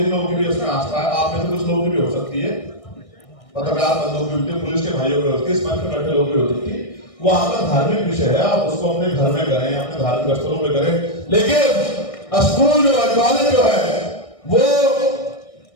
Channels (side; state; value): right; late; 1.6 ms